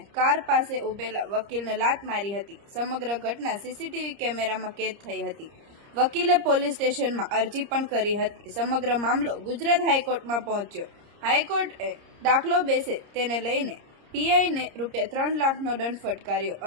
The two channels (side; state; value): left; late; 30 ms